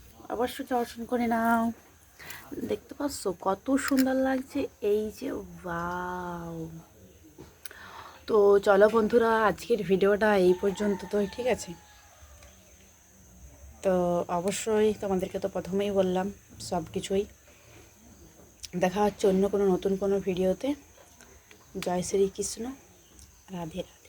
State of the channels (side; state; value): both; identical; correlation 1.00